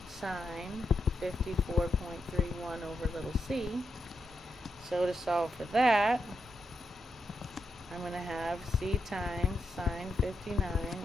sine 54.31 over little c. So to solve for that, I'm going to have c times sine 59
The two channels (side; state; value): both; normal; correlation 0.85